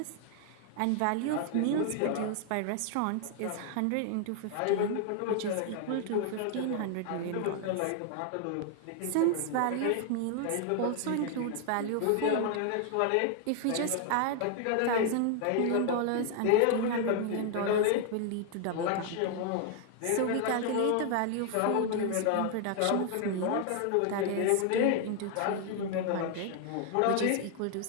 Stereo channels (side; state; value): both; different; correlation 0.00